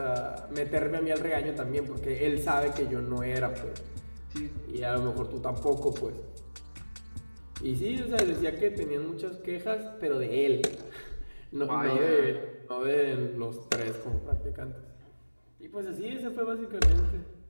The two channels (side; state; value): both; inverted; correlation -1.00